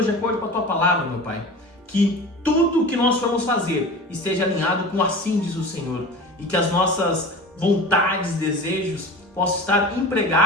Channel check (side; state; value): both; normal; correlation 0.35